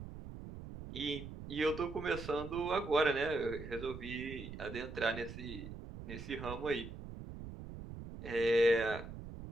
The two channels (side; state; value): right; noise; rumble, 11 dB below the sound